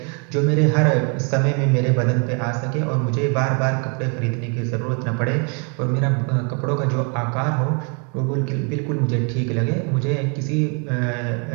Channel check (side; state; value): left; quieter; 36.4 dB